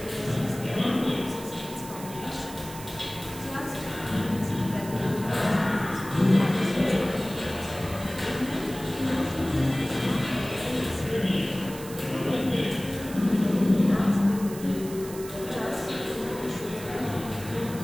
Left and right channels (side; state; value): right; noise; hiss, 15 dB below the sound